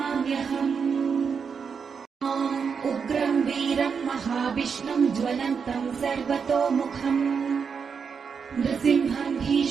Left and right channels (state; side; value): quieter; left; 6.1 dB